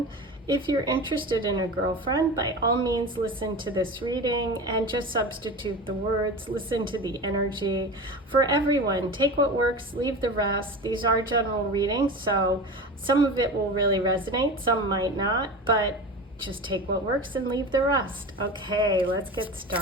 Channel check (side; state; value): both; normal; correlation 0.30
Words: if you're interested in a girlfriend, by all means listen to this reading and just substitute the words, listen to the energy. For everyone, take what works, leave the rest. These are general readings, so some of it will really resonate, some might not, but just take what works and leave the rest. Okay, let's get